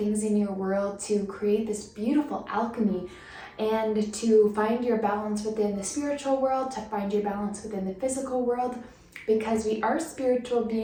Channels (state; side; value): identical; both; correlation 1.00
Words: in your world to create this beautiful alchemy, and to find your balance within the spiritual world, to find your balance within the physical world, because we are spiritual